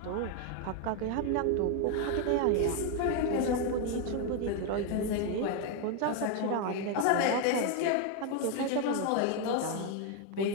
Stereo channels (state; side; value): different; both; correlation 0.01